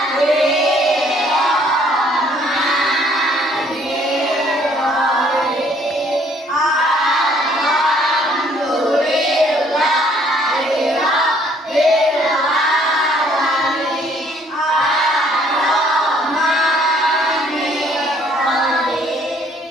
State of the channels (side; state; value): both; normal; correlation 0.62